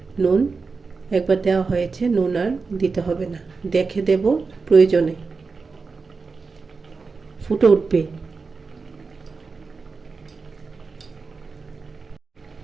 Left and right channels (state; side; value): quieter; left; 4.5 dB